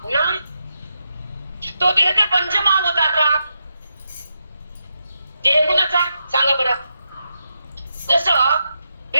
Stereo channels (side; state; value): both; inverted; correlation -0.85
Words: नाही. तो देहाचा पंचमहाभूताचा देह गुणाचा